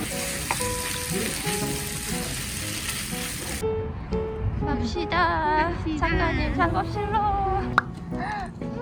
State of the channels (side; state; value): both; identical; correlation 1.00